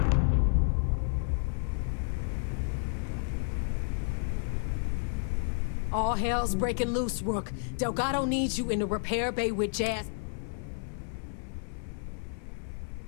All hell's breaking loose, Rook. Delgado needs you in the repair bay with Jazz.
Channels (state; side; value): silent; right; 57 dB below the other